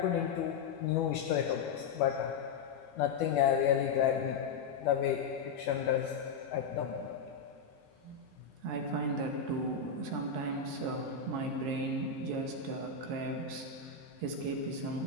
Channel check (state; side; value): quieter; right; 5.2 dB